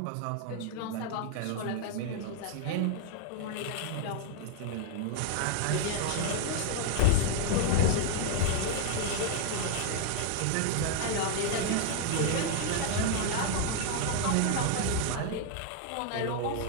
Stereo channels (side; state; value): both; different; correlation 0.00